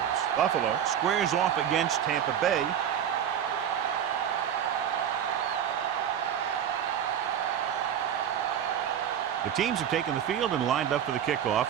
Buffalo squares off against Tampa Bay. The teams have taken the field and lined up for the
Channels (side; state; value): left; quieter; 9.3 dB